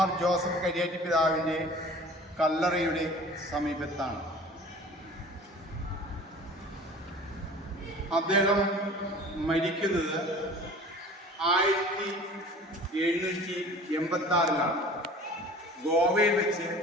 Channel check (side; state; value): both; normal; correlation 0.44